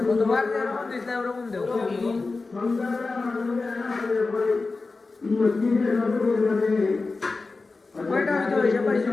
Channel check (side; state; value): right; quieter; 3.8 dB